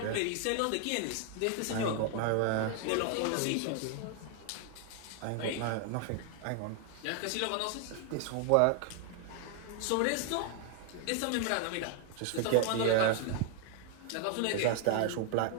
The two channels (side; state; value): both; different; correlation 0.00